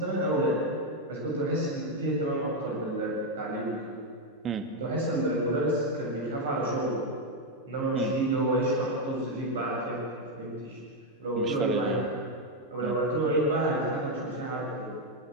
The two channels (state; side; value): normal; both; correlation 0.04